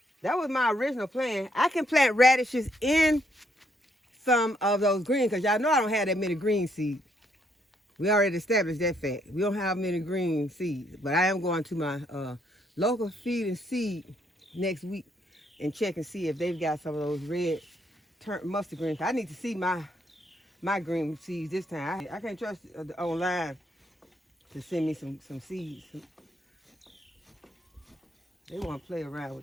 That was my original plan. I can plant radishes in some of those greens, because y'all know I don't have that many green seeds. We already established that fact. We don't have many green seeds, but I am going to my local feed and seed next week and check and see if they've got some of those red mustard greens. I need to see my green seeds this time. I can't trust online to send me some seeds. They want to play around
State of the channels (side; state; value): both; normal; correlation 0.72